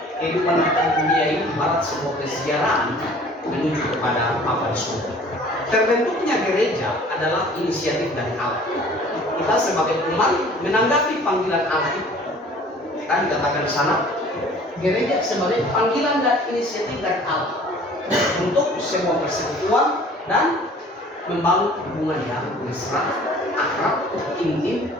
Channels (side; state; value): both; normal; correlation 0.50